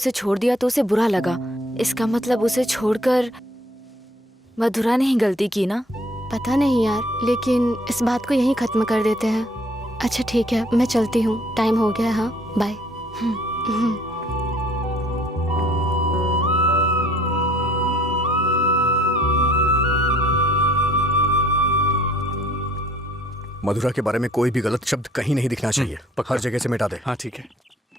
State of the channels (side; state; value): both; normal; correlation 0.59